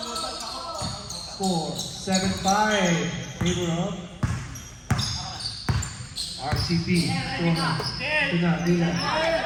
4, 7-5. Favor of RCP. Ito na.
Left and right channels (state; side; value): identical; both; correlation 1.00